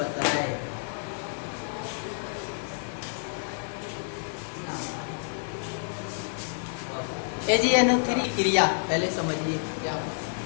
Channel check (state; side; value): silent; right; 59 dB below the other